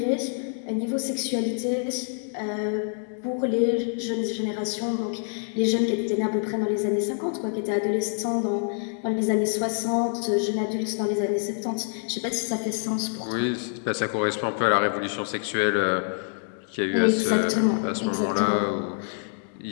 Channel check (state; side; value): silent; right; 60 dB below the other